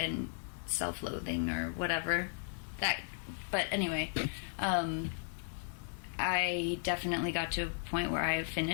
and self-loathing or whatever. But anyway, I definitely got to a point where I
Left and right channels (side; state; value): right; silent; digital silence